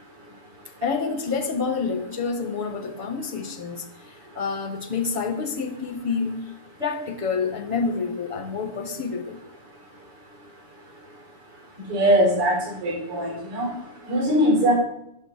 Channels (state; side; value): late; left; 7.0 ms